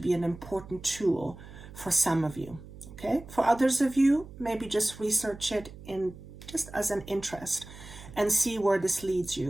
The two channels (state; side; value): noise; right; hum, 16 dB below the sound